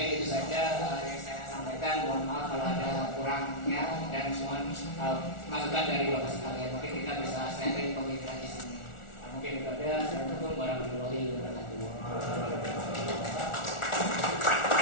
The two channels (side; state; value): right; late; 1.4 ms